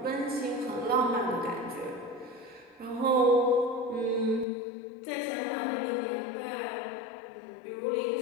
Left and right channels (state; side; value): drops out; right; at 4.5 s